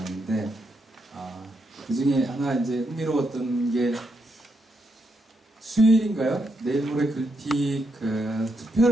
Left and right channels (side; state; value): both; normal; correlation 0.80